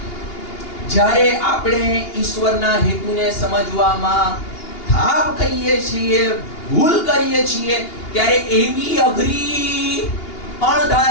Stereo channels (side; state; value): right; late; 2.8 ms